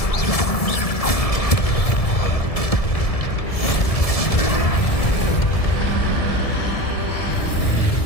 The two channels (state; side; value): late; right; 1.7 ms